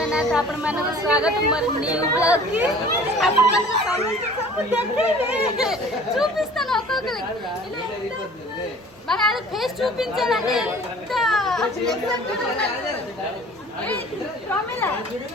आपण మనకు స్వాగతం మరి న్యూ బ్లాగ్ కి आपण మనకు చూపిస్తాను ఒక్కొక్కరికి మన అది ఫేస్ చూపించాలంటే ఎంత ప్రమిళ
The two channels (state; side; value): normal; both; correlation 0.47